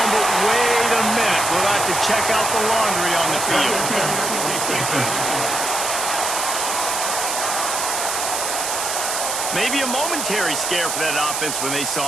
but wait a minute. We'll have to check out the laundry on the field. Maybe a momentary scare for that offense when they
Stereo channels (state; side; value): noise; right; hiss, 2 dB below the sound